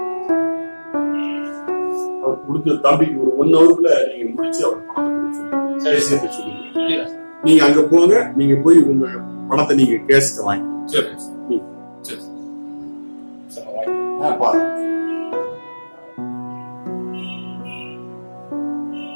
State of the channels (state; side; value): inverted; both; correlation -1.00